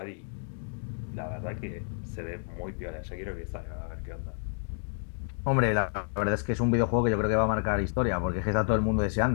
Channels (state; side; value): silent; right; digital silence